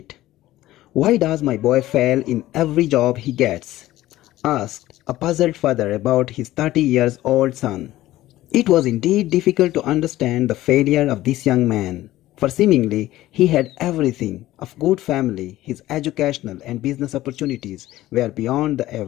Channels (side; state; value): right; quieter; 15.6 dB